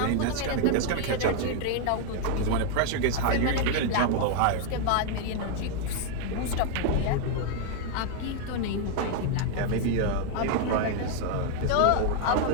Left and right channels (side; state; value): both; different; correlation 0.00